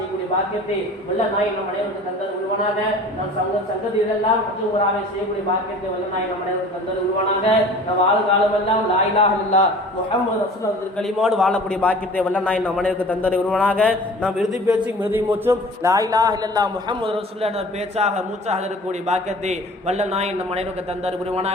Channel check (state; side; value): normal; both; correlation 0.44